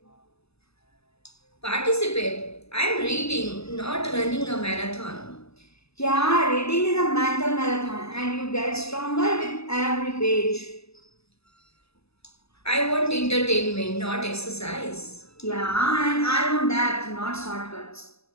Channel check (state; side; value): late; right; 0.79 ms